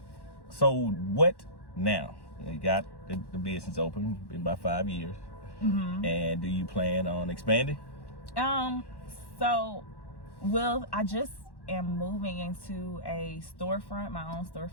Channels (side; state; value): right; late; 1.1 ms